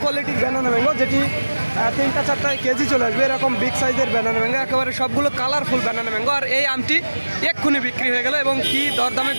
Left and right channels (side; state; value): both; inverted; correlation -1.00